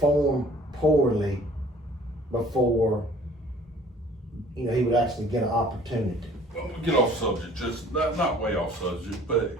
poorly before, he would actually get an opportunity. Well, we'll get off subject, just not way off subject, but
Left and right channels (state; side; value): normal; both; correlation 0.53